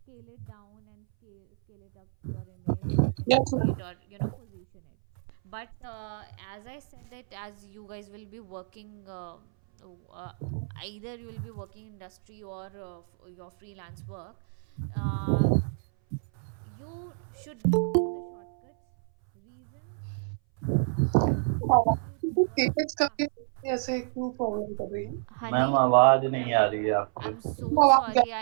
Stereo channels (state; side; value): silent; left; 59 dB below the other